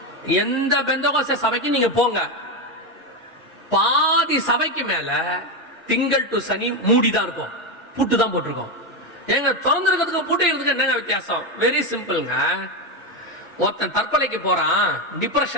எந்த பெந்தகோஸ்தே சபைக்கு நீங்க போங்க, பாதி சபைக்கு மேல திங்கள் டு சனி மூடிதான் இருக்கும், பூட்டு தான் போட்டிருக்கோம். எங்க திறந்திருக்கிறதுக்கு பூட்டி இருக்கிறதுக்கு என்னங்க வித்தியாசம்? வெரி சிம்பிள்ங்க. ஒருத்தன் தற்கொலைக்கு போறான்,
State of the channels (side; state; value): both; normal; correlation 0.10